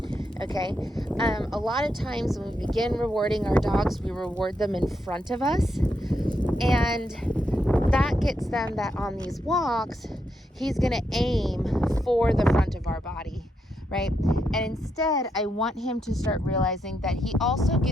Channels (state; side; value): normal; both; correlation 0.81